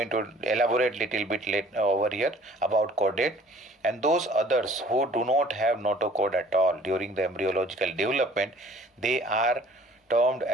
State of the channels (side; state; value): both; normal; correlation 0.53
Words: to elaborate little bit later over here about chordate, and those others who do not have notochord at all during the embryological development, they are termed